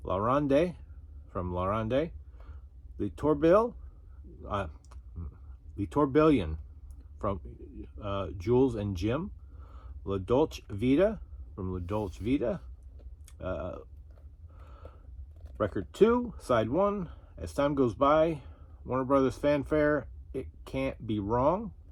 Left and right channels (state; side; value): identical; both; correlation 1.00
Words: La Ronde from La Ronde. The Tourbillon from Jules and Jim. La Dolce Vita from La Dolce Vita. Record 2, Side 1, As Time Goes By, Warner Brothers fanfare, It Can't Be Wrong